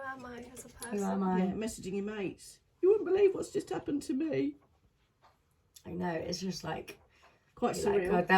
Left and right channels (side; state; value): both; identical; correlation 1.00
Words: I as a person? who am I? Yeah, messaging your mates. You wouldn't believe what's just happened to me. I know, it's just like, Quite like surreal. God,